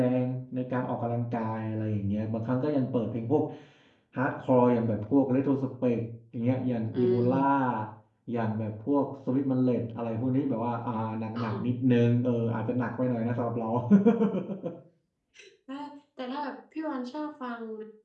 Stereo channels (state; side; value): identical; both; correlation 1.00